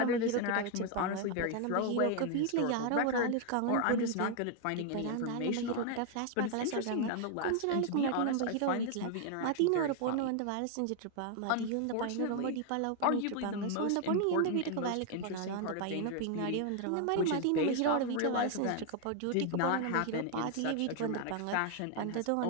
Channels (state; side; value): different; both; correlation 0.00